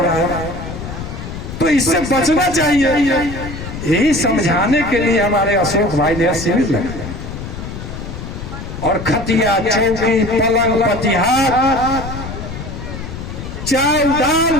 तो इससे बचना चाहिए। यही समझाने के लिए हमारे अशोक भाई ने शिविर लगाया, और खटिया चौकी पलंग पतिहार चावल दाल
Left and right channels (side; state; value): left; noise; rumble, 9 dB below the sound